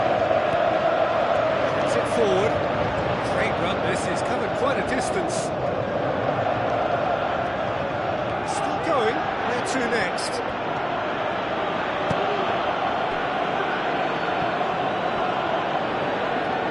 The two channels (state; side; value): identical; both; correlation 1.00